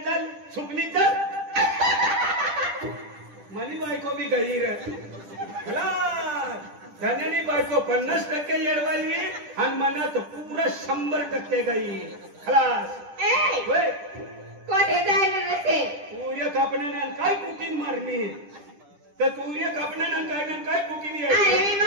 चल सुकनी चल मनी बायको भी गई रे धन्यानी बायको 50% येडवाली आणि मनात पूरा 100% गई खलास कोठे जायला नसे सूर्य कापण्यानं काय कुटीन मारणी तर सूर्य कापण्यानं काय कुटीन अरे मी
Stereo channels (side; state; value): left; late; 10 ms